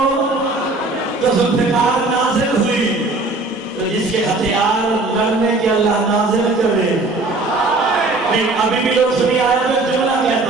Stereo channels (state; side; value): quieter; left; 3.2 dB